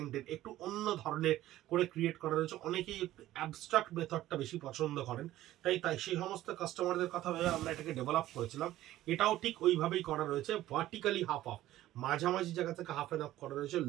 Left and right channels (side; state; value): left; quieter; 14.6 dB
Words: একটু অন্য ধরনের করে ক্রিয়েট করা রয়েছে। অনেকেই একটু অ্যাবস্ট্রাক্ট মেথডটা বেশি পছন্দ করেন, তাই সেই সমস্ত কাস্টমারদের কথা ভেবে আমরা এটাকে ডেভেলপ করেছিলাম। এটাও ঠিক ওইভাবেই করা রয়েছে, ভার্টিক্যালি হাফ অফ, মাঝামাঝি জায়গা থেকে হাফ অ্যান্ড হাফ করা রয়েছে।